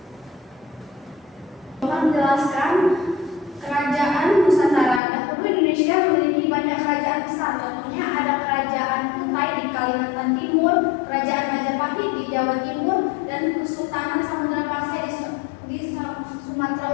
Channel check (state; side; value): drops out; right; at 5.0 s